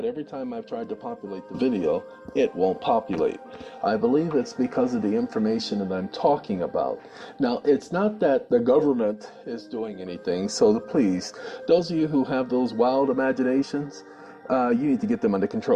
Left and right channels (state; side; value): identical; both; correlation 1.00